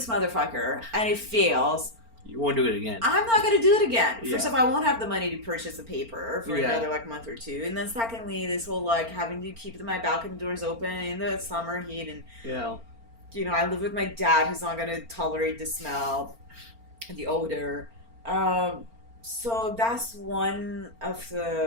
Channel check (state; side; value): late; left; 4.4 ms